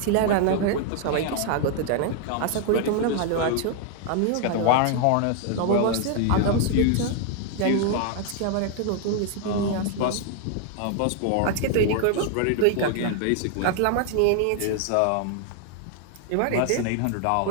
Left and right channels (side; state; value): both; different; correlation 0.00